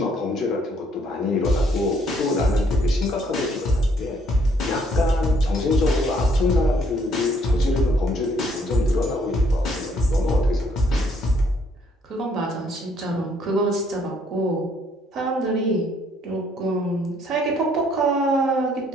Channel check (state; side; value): normal; both; correlation 0.66